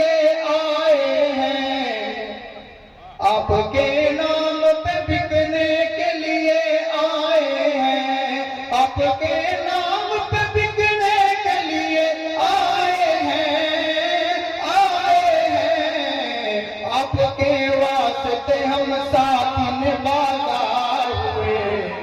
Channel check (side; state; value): both; identical; correlation 1.00